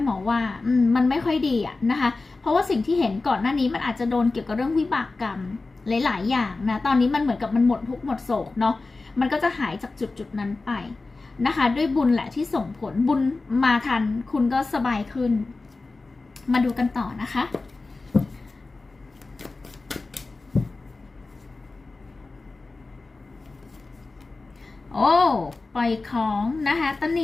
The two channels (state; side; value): quieter; right; 3.6 dB